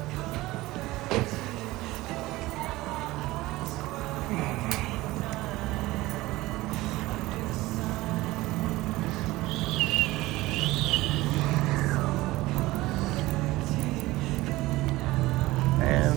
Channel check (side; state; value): left; quieter; 18.8 dB